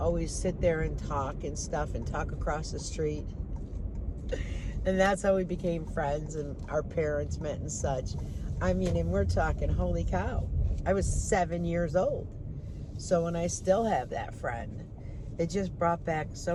sit there and talk and stuff and talk across the street. And that's how we became friends, and our parents met and such. I mean, and we're talking, holy cow. I was 7 years old. So when I still have that friend, it just brought back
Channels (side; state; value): both; identical; correlation 1.00